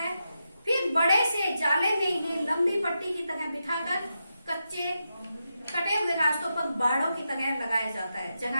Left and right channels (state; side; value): inverted; both; correlation -0.87